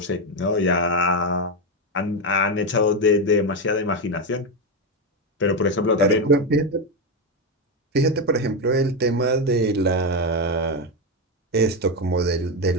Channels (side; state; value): both; normal; correlation 0.09